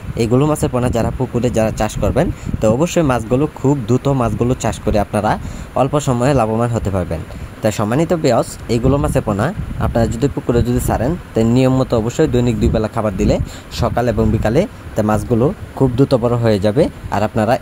এইগুলো মাছের পোনা যারা পুকুরে যারা চাষ করবেন, তো অবশ্যই মাছগুলো খুব দ্রুত মাছগুলো চাষ করে আপনারা অল্প সময়ে লাভবান হতে পারবেন। তাই সম্মানিত ব্যাস, এইগুলো মাছের পোনা আপনারা যদি পুকুরে যদি ছাড়েন, তাই নিয়ম মতো অবশ্যই দৈনিক 2 বেলা খাবার দিলে সকাল এবং বিকালে তাই মাছগুলো খুব দ্রুত বড় হয়ে যাবে। আর আপনারা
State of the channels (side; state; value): both; identical; correlation 1.00